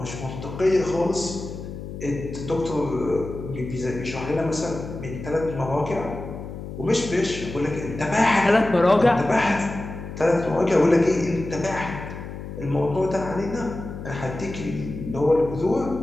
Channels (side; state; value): left; noise; hum, 10 dB below the sound